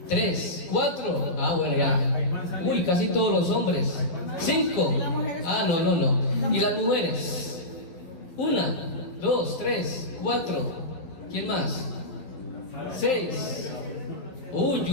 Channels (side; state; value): right; late; 11 ms